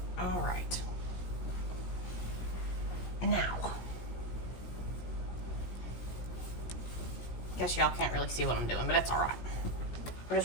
All right. Now. Guess y'all can't really see what I'm doing, but it's all right. I'm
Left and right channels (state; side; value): late; right; 17 ms